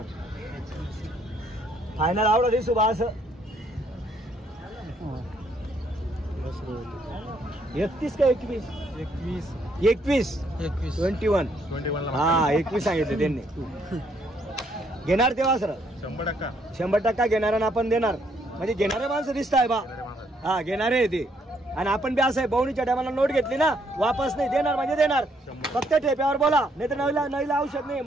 फायनल आवडा दिसू बा असं 31 का 21? 21 21 हा 21 सांगितले त्यांनी. घेणार तेव्हा सर 100% घेणार आणि आपण देणार. म्हणजे घेणारे माणसं दिसत आहे बा. हा घेणारे आहे ते. आणि आपण बी असं आहे बहुणीच्या टायमाला नोट घेतली ना वापस नाही देणार म्हणजे देणार. फक्त ठेप्यावर बोला नाही तर नवीला औषध नाही.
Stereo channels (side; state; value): both; normal; correlation 0.70